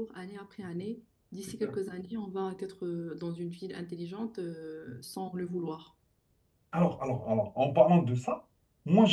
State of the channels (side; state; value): both; identical; correlation 1.00